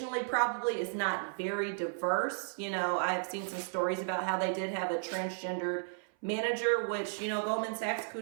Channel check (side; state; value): left; silent; 55 dB below the other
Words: probably is not very diverse. You know, I've seen some stories about how they did have a transgendered manager, which, you know, Goldman Sachs,